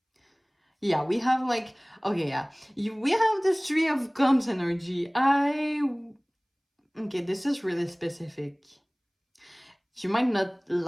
Yeah, we have like, okay, yeah. We have this Three of Cups energy. Okay, this is really specific. You might not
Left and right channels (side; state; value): both; identical; correlation 1.00